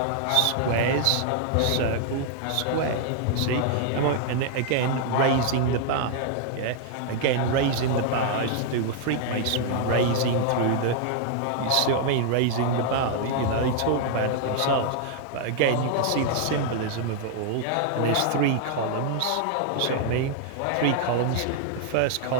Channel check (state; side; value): different; both; correlation 0.00